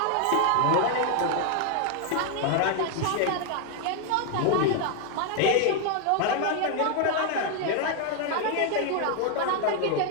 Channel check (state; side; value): different; both; correlation 0.00